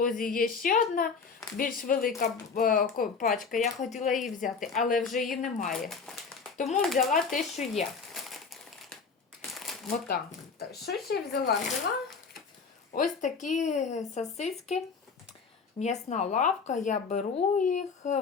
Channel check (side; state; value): right; quieter; 5.2 dB